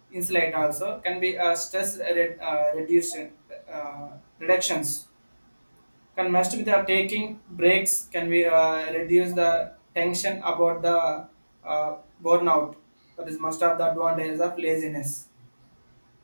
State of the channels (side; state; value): both; inverted; correlation -1.00